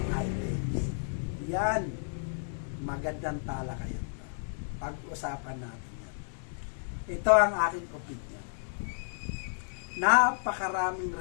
items. Yan, magandang talakayan. Pag-usapan natin yan. Ito ang aking opinion. Napakaraming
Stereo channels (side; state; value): right; silent; digital silence